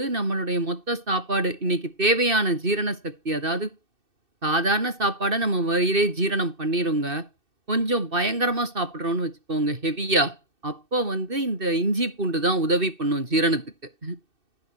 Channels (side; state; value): left; late; 2.6 ms